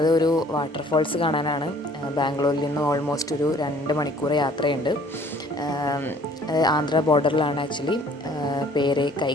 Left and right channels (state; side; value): normal; both; correlation 0.56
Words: ഒരു വാട്ടർഫോൾസ് കാണാനാണ്. ബാംഗ്ലൂരിൽ നിന്ന് ഓൾമോസ്റ്റ് ഒരു 2 മണിക്കൂർ യാത്രയുണ്ട്. ആന്ധ്ര ബോർഡറിലാണ് ആക്ച്വലി. പേര്